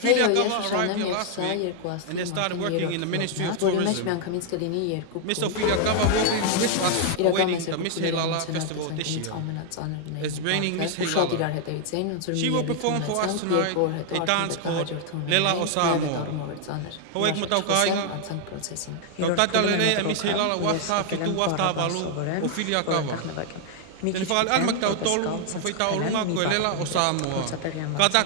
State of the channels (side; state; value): both; different; correlation 0.00